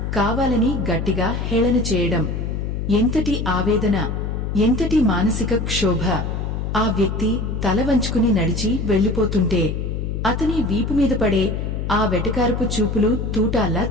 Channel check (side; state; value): left; noise; hum, 3 dB below the sound